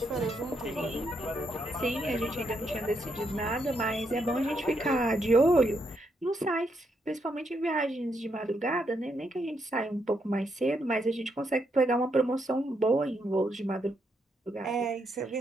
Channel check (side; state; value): both; normal; correlation 0.78